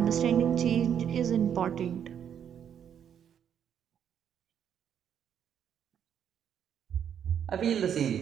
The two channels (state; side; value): quieter; left; 8.8 dB